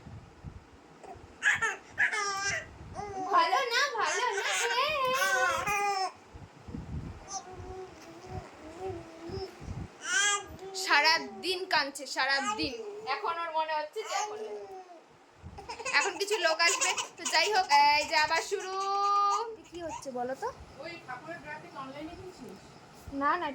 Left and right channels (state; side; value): identical; both; correlation 1.00